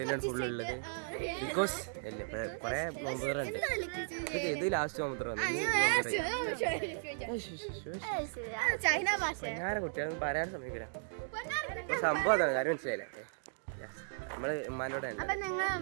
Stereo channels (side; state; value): left; silent; digital silence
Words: ഫുൾ ഉള്ളത്. ബിക്കോസ് അല്ലേ കൊറേ നോമ്പുതറുണ്ട്. ഇത് ലാസ്റ്റ് നോമ്പുതറ കുട്ടികളൊന്നും പറയാൻ സമയമില്ല. സംഭവം അതാണ്, കാര്യം മനസ്സിലായില്ലേ? നമ്മള് ഉമ്മാനോടെ